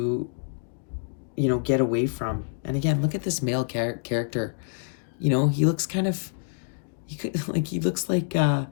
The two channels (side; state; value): right; silent; digital silence